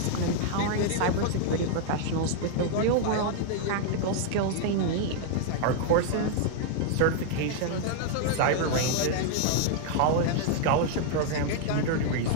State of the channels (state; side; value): different; both; correlation 0.00